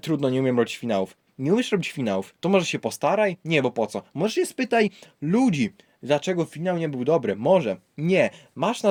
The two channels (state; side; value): identical; both; correlation 1.00